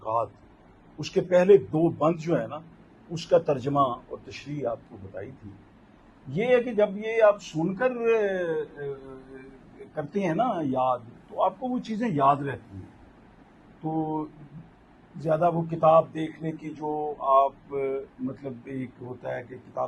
اس کے پہلے دو بند جو ہے نا، اس کا ترجمہ اور تشریح آپ کو بتائی تھی۔ یہ ہے کہ جب یہ آپ سن کر کرتے ہیں نا یاد، تو آپ کو وہ چیزیں یاد رہتی ہیں۔ تو زیادہ وہ کتاب دیکھنے کی جو آپ مطلب ایک ہوتا ہے کہ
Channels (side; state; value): both; identical; correlation 1.00